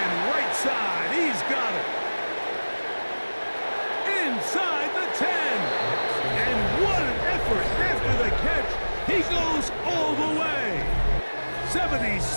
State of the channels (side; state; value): both; inverted; correlation -1.00